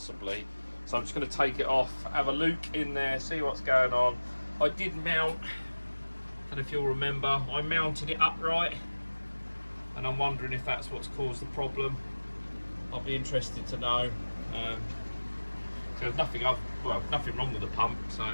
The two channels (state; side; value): inverted; both; correlation -1.00